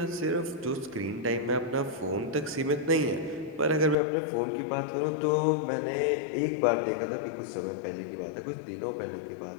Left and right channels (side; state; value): right; drops out; at 4.0 s